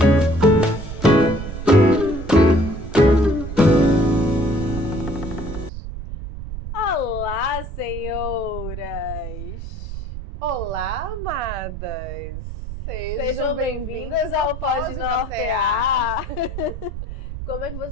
Olá, senhoras! Olá, amadas! Sejam bem-vindas ao Pode Nortear! Como é que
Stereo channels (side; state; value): right; noise; rumble, 9 dB below the sound